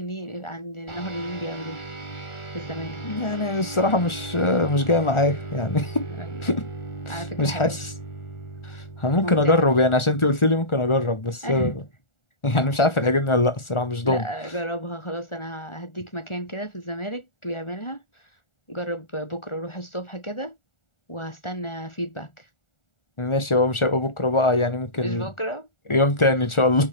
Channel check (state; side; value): late; right; 1.4 ms